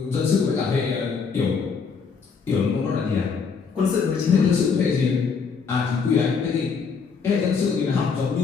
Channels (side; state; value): right; quieter; 5.6 dB